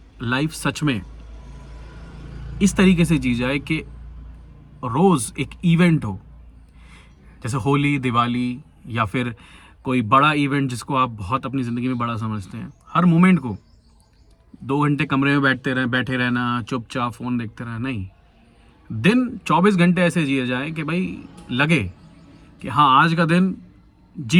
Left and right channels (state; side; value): identical; both; correlation 1.00